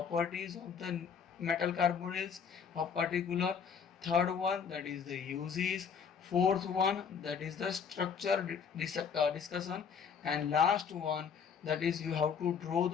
of the metal carbonyls of particular, third one that is the uses, fourth one that is the structure discussion, and last one that is you have to draw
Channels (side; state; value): right; quieter; 6.8 dB